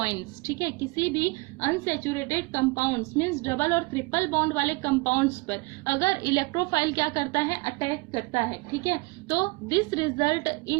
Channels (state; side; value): quieter; left; 26.2 dB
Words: ठीक है, किसी भी अनसेचुरेटेड कंपाउंड्स मींस डबल और ट्रिपल बॉन्ड वाले कंपाउंड्स पर अगर इलेक्ट्रोफाइल क्या करता है अटैक करता है। ठीक है, तो this result